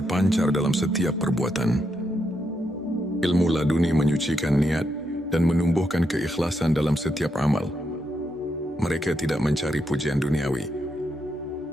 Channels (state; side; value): normal; both; correlation 0.81